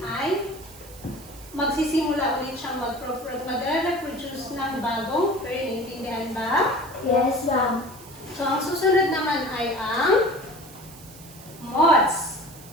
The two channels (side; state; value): right; noise; hiss, 19 dB below the sound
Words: ay magsisimula ulit siyang magre-reproduce ng bagong fern. Intindihan ba? Yes, ma'am. So, ang susunod naman ay ang moths.